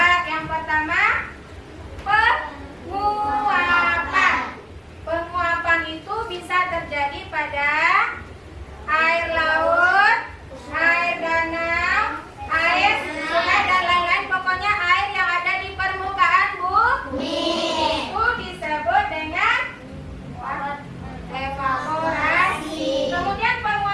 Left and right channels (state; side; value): identical; both; correlation 1.00